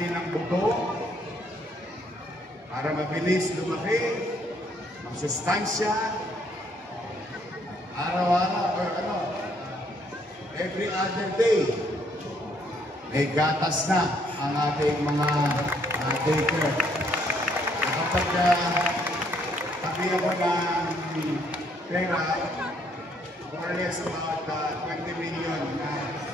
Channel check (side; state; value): both; normal; correlation 0.68